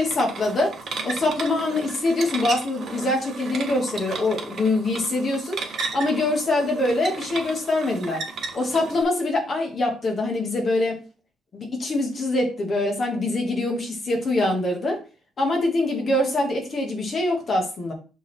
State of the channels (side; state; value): both; normal; correlation 0.76